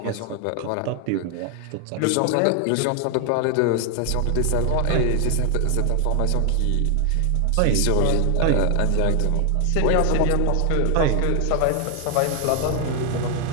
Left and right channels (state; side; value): different; both; correlation 0.00